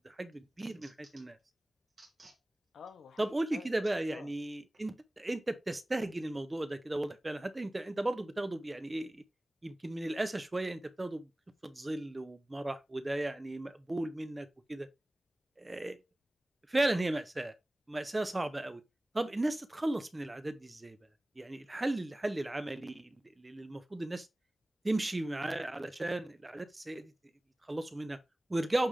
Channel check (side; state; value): both; normal; correlation 0.98